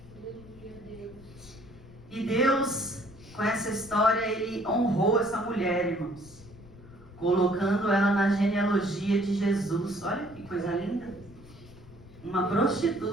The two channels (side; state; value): left; noise; rumble, 20 dB below the sound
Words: Aleluia, Deus. E Deus, com essa história, Ele honrou essa mulher, irmãos. Colocando ela na genealogia de Jesus. Olha que coisa linda. Uma